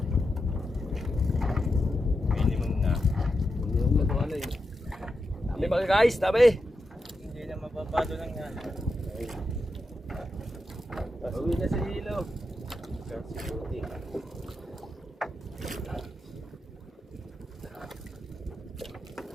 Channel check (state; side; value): normal; both; correlation 0.87